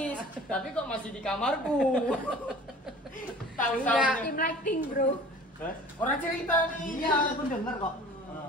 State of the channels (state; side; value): normal; both; correlation 0.44